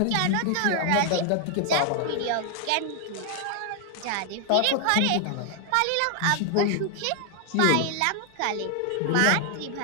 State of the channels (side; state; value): both; different; correlation 0.00